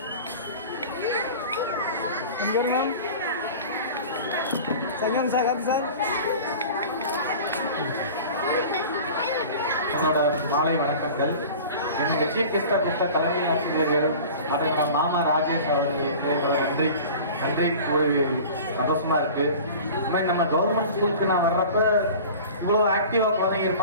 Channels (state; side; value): inverted; both; correlation -0.39